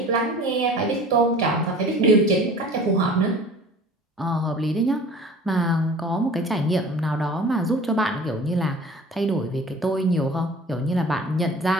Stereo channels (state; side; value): normal; both; correlation 0.44